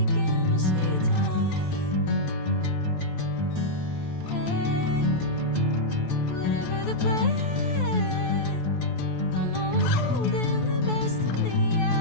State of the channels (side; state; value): right; late; 12 ms